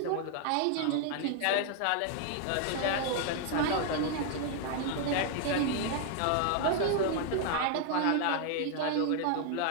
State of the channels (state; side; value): different; both; correlation 0.00